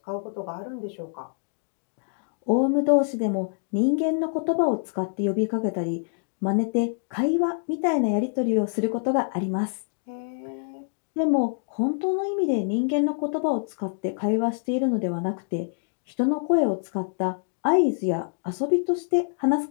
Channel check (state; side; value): silent; right; digital silence